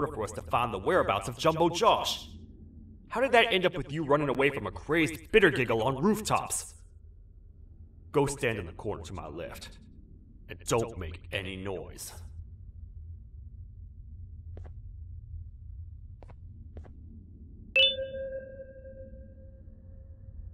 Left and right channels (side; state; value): both; identical; correlation 1.00